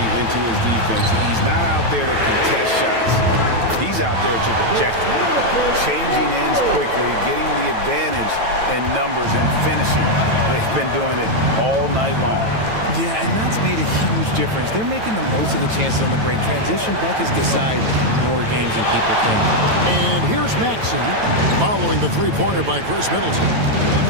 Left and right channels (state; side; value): late; left; 9.1 ms